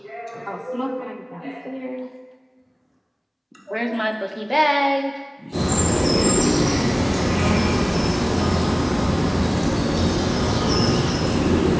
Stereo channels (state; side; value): identical; both; correlation 1.00